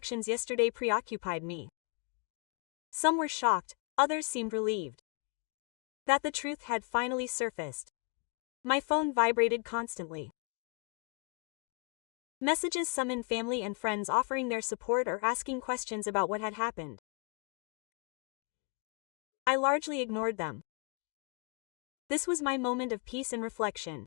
yesterday preoccupied me. Some were shocked, others seemed relieved that the truth had finally surfaced. My phone vibrated constantly. Messages summoned family and friends offering their support or asking questions about what had happened. I largely ignored them. This was my moment of peace and reflection.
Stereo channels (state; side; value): quieter; right; 36.9 dB